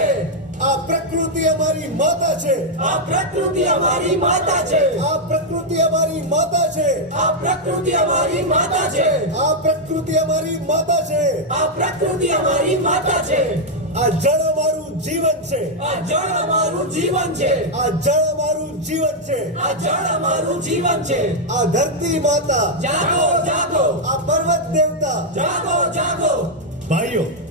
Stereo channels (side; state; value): both; normal; correlation -0.01